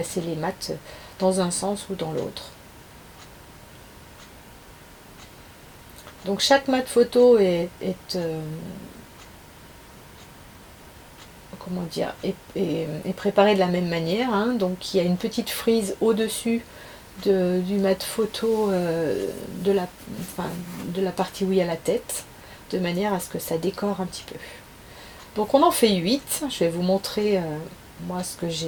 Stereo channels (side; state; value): both; identical; correlation 1.00